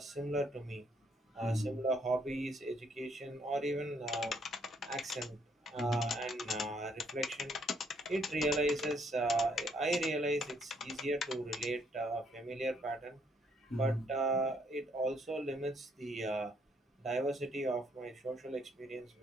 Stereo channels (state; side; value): normal; both; correlation 0.69